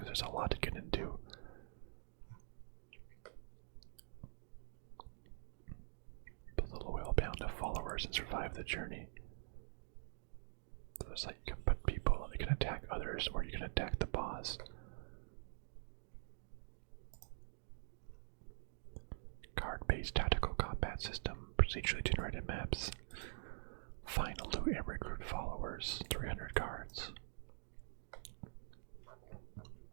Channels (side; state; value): left; silent; digital silence